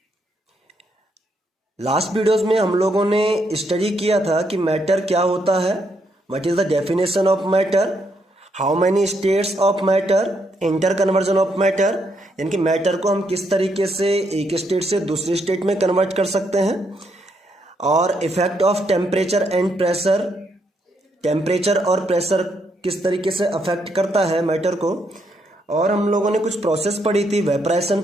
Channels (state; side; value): normal; both; correlation 0.76